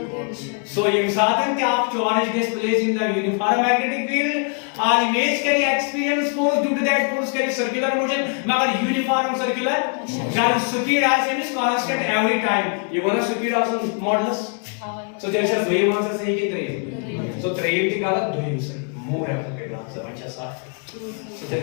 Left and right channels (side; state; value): right; quieter; 38.7 dB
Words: ये साधन कि आप charge gets placed in the uniform magnetic field, और image करी experience force due to that force करी circular motion, मगर uniform circular, जब speed as is constant every time, ये वाला speed also modulus, so चलिए सर दो ही आंसर सही की तरह, so त्रियम की गलत दो ही सही, more appropriate answer अच्छा साफ, so चलिए